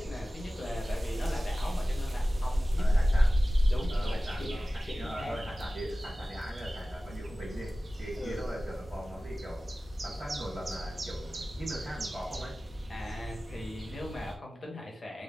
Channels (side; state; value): both; normal; correlation 0.97